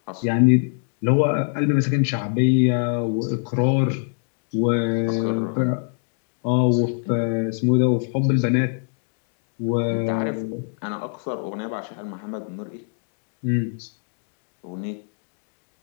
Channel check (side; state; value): right; silent; digital silence